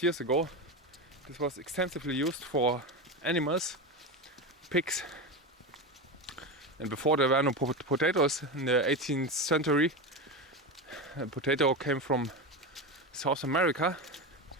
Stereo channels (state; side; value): normal; both; correlation 0.18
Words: years ago this was extensively used for animals, pigs, and before there were no potatoes in the 18th century. A potato came from South America,